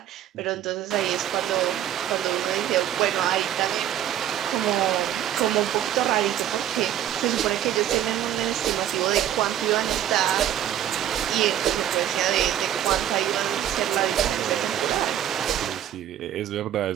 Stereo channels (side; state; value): left; quieter; 11.1 dB